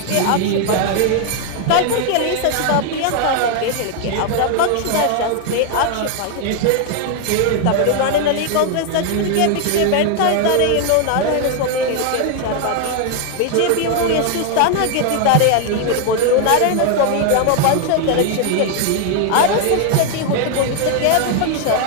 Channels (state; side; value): different; both; correlation 0.00